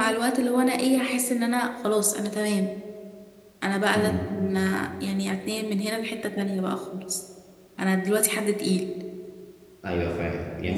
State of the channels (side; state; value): both; identical; correlation 1.00